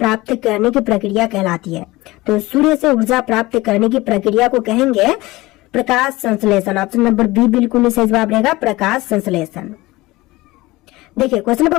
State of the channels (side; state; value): right; quieter; 20.1 dB